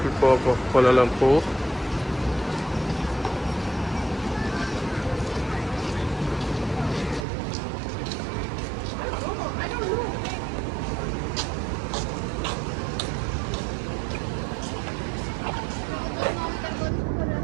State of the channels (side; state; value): left; drops out; at 7.2 s